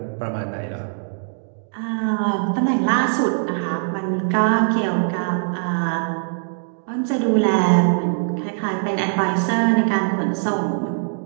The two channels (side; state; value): left; silent; digital silence